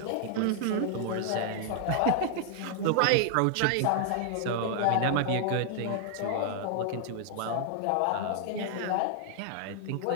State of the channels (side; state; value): both; different; correlation 0.00